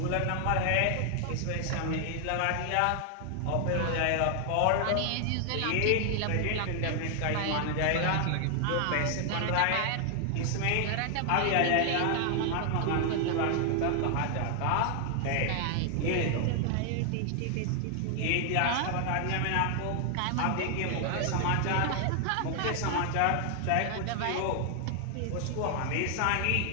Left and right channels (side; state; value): both; different; correlation 0.00